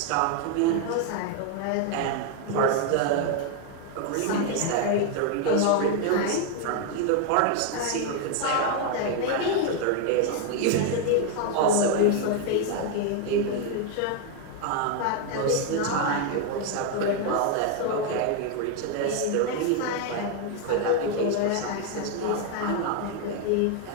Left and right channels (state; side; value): different; both; correlation 0.01